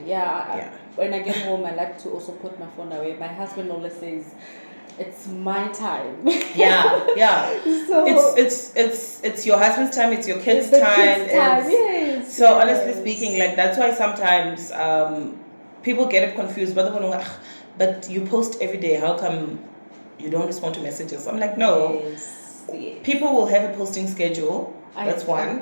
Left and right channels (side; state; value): both; inverted; correlation -1.00